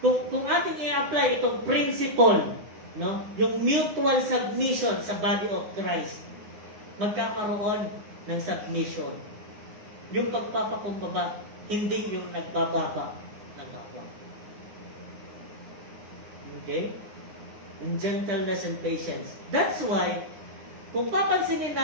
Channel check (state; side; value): late; left; 9.6 ms